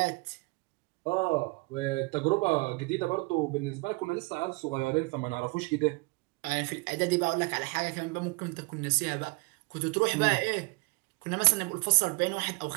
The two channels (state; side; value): quieter; left; 28.4 dB